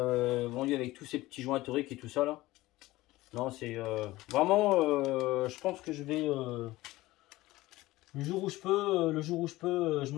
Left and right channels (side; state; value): right; quieter; 18.2 dB